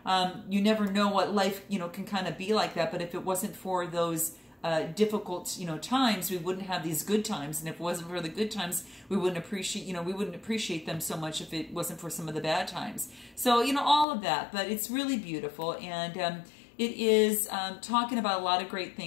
you never know what life, can kind of be like that. But if it wasn't for those difficult, times, we wouldn't have these good times. And if it wasn't for the good times, we wouldn't appreciate them so much if it wasn't for some of the bad times. So, all of that, but it's really beautiful. And it is talking about a lot of great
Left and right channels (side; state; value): right; drops out; at 14.1 s